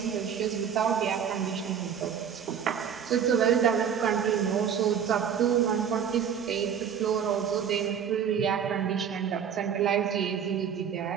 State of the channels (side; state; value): left; quieter; 8.0 dB